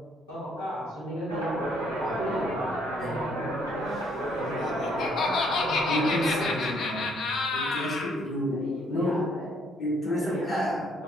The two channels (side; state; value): both; normal; correlation 0.66